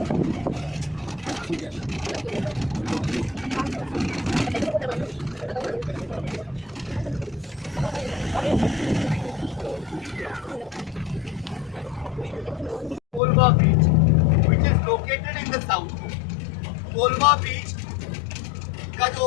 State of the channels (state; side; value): drops out; right; at 13.2 s